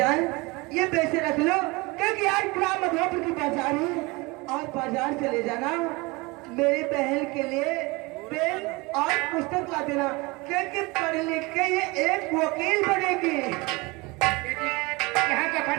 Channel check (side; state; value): left; quieter; 24.8 dB